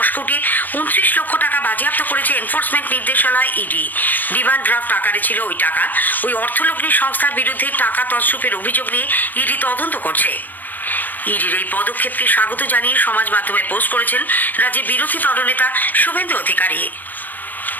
কোটি 29 লক্ষ টাকা বাজেয়াপ্ত করেছে এনফোর্সমেন্ট নির্দেশালয় ইডি। ডিমান্ড ড্রাফট আকারে ছিল ওই টাকা। ওই অর্থলগ্নি সংস্থার বিরুদ্ধে টাকা তছরূপের অভিযোগ নিয়ে ইডি তদন্ত করছে। ইডির এই পদক্ষেপকে স্বাগত জানিয়ে সমাজ মাধ্যমে পোস্ট করেছেন রাজ্যের বিরোধী দলনেতা শুভেন্দু অধিকারী।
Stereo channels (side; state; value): right; late; 0.085 ms